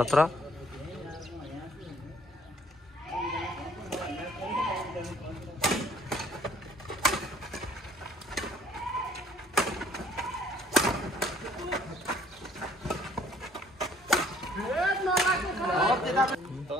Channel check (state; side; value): normal; both; correlation 0.59